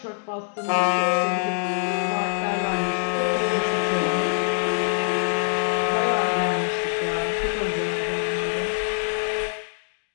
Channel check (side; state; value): right; silent; digital silence